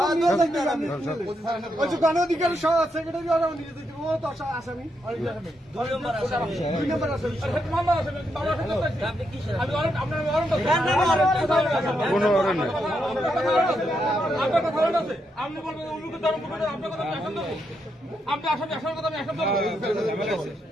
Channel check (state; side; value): normal; both; correlation 0.81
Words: গণঅধিকার সেক্রেটারি নিয়ে যেতে ও তো আসামি আপনি বলবেন আপনি আসামি আসার কথা